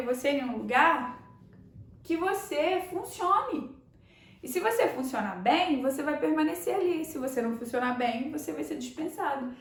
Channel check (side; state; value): both; identical; correlation 1.00